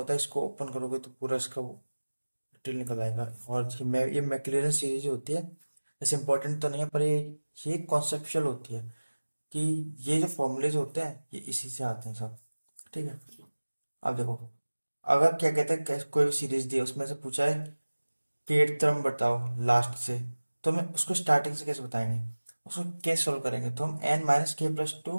है, इसको ओपन करोगे तो पूरा इसका डिटेल निकल आएगा। और ये मैक्लॉरिन सीरीज होती है। ऐसे इंपॉर्टेंट तो नहीं है, पर ये कॉन्सेप्चुअल होती है कि ये जो फॉर्मूलेज होते हैं ये इसी से आते हैं सब। ठीक है, अब देखो, अगर क्या कहते हैं, कोई भी सीरीज दी है, उसमें से पूछा है कि 8th टर्म बताओ लास्ट से, तो हमें उसको स्टार्टिंग से कैसे बताएंगे, उसको कैसे सॉल्व करेंगे। तो हम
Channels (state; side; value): inverted; both; correlation -1.00